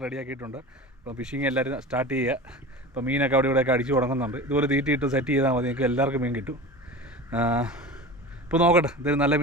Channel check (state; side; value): normal; both; correlation 0.32